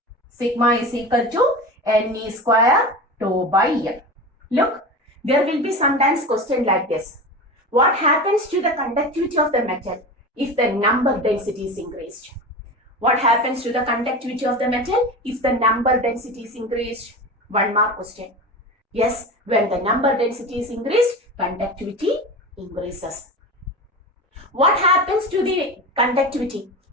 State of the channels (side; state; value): both; normal; correlation 0.28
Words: Sigma is equal to NE square tau by M. Look, there will be sometimes question like this. What happens to the conductivity of the metal if the number density is increased? What happens to the conductivity of the metal if the number density is increased? One more question. Yes, when the number density is increased, conductivity increases. What happens to the conductivity